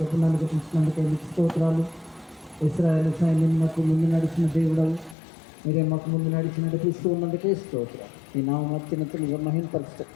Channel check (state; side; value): drops out; right; at 5.2 s